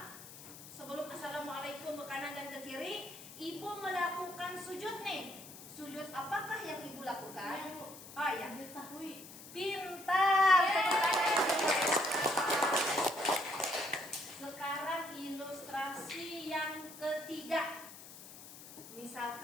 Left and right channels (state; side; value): noise; left; hiss, 15 dB below the sound